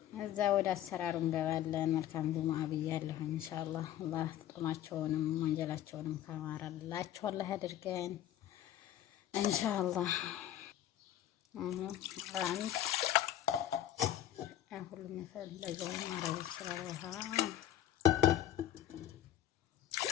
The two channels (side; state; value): right; quieter; 11.9 dB